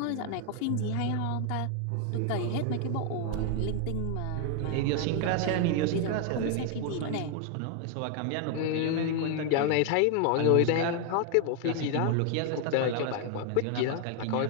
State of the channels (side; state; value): both; different; correlation 0.00